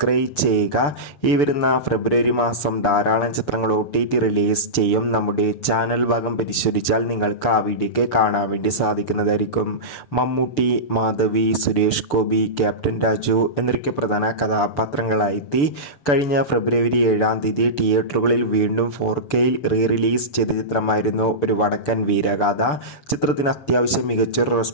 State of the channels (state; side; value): late; right; 6.8 ms